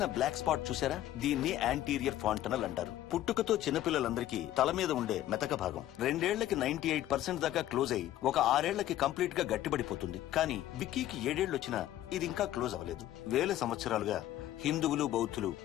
బ్లాక్ స్పాట్ చూసారా? దీన్ని యాంటీరియర్ ఫాంటనల్ అంటారు. పుట్టుకతో చిన్నపిల్లలందరికీ తల మీద ఉండే మెతక భాగం 2 ఏళ్లకి 98% దాకా క్లోజ్ అయి ఒక 6 ఏళ్లకి కంప్లీట్ గా గట్టిపడిపోతుంది. కానీ విక్కీకి 7 ఏళ్లు వచ్చినా ఇది ఇంకా క్లోజ్ అవ్వలేదు. వేల సంవత్సరాలుగా హిందువులు బౌద్ధులు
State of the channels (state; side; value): quieter; right; 13.5 dB